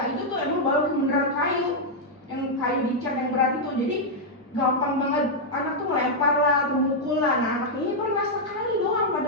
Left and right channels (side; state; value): both; normal; correlation -0.03